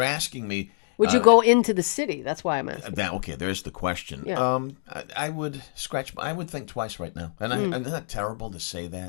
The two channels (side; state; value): right; silent; digital silence